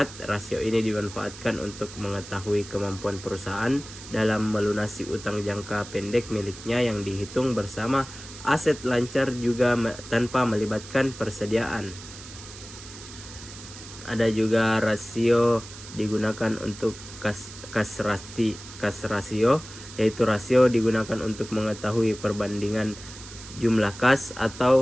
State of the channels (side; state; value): right; noise; hiss, 15 dB below the sound